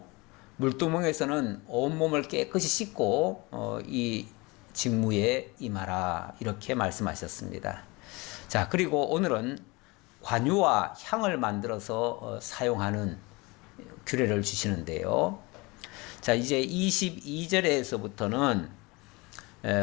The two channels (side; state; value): right; quieter; 24.9 dB